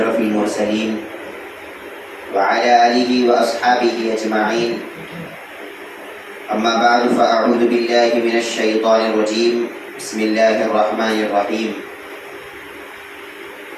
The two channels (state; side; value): identical; both; correlation 1.00